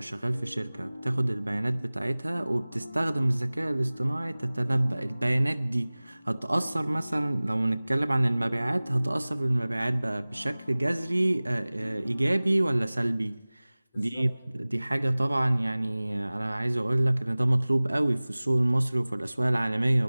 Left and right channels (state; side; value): inverted; both; correlation -0.99